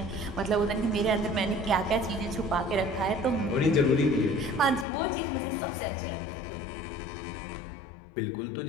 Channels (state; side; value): drops out; right; at 4.9 s